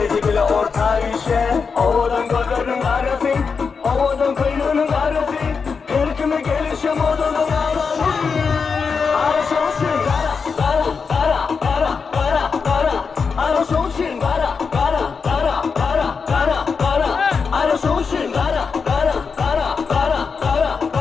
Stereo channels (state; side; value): quieter; right; 5.4 dB